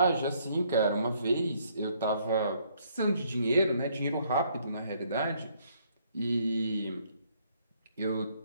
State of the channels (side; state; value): both; inverted; correlation -0.67